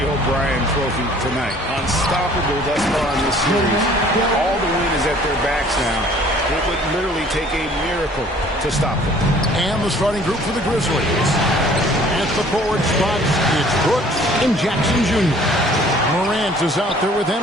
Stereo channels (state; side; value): normal; both; correlation 0.54